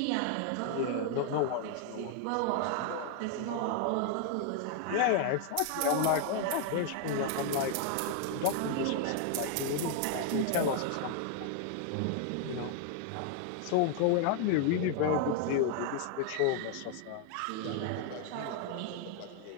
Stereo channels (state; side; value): different; both; correlation 0.00